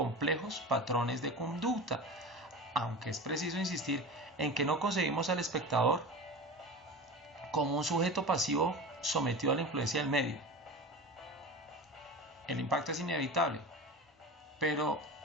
patrones de conducta, aunque es preciso insistir en que no concebimos al espectador como un sujeto pasivo sometido a la influencia del medio. El impacto es inevitable, pero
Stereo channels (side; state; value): both; normal; correlation 0.30